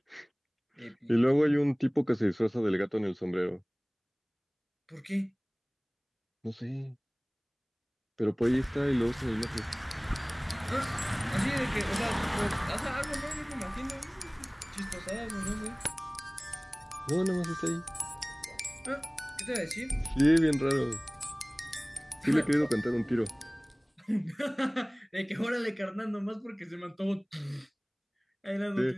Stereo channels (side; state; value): both; identical; correlation 1.00